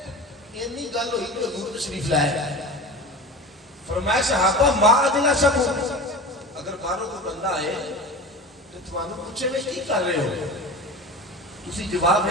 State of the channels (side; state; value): both; normal; correlation 0.32